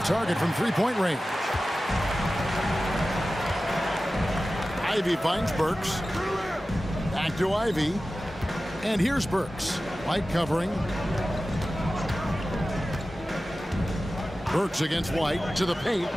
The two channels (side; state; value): both; normal; correlation 0.95